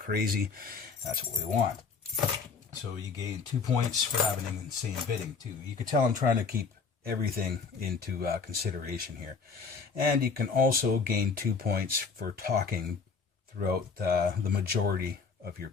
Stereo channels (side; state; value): right; quieter; 5.2 dB